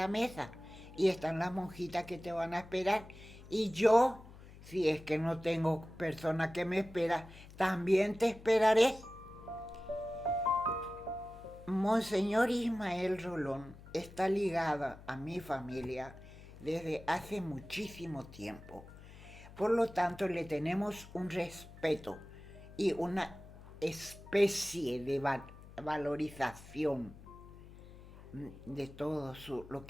mesa. Y están las monjitas que te van a esperar. Y yo, si es que no tengo persona que me espera, también te esperaré. Monseñor Ismael Rolón está ligada a mi familia desde hace muchísimo tiempo. Por lo tanto, le tenemos un respeto y una especie de valorización de todo lo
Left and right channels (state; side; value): noise; left; hum, 18 dB below the sound